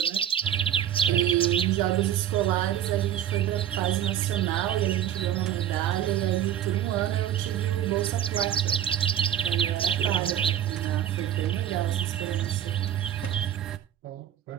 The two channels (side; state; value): left; quieter; 10.7 dB